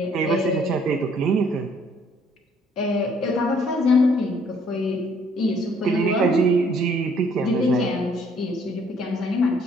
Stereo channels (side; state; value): both; normal; correlation 0.63